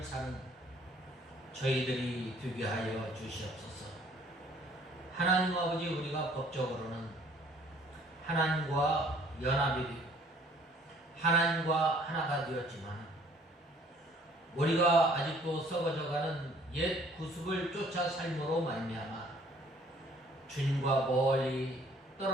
사는 저희들이 되게 하여 주시옵소서. 하나님 아버지, 우리가 법적으로는 하나님과 연합이 되고 하나님과 하나가 되었지만 우리가 아직도 썩어져가는 옛 구습을 쫓아 삶으로 말미암아 주님과 멀리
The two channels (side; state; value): both; normal; correlation 0.58